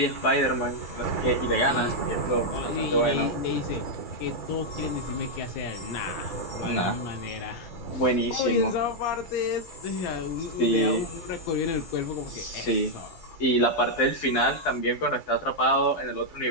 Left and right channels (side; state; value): right; late; 12 ms